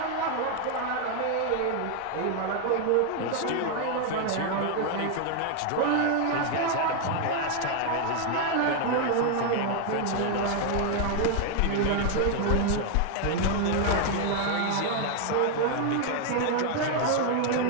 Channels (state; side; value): different; both; correlation 0.00